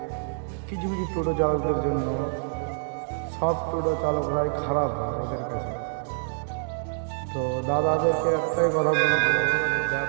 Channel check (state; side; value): silent; left; digital silence